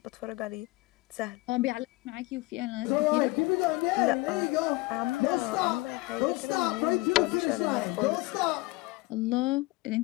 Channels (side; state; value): right; quieter; 21.6 dB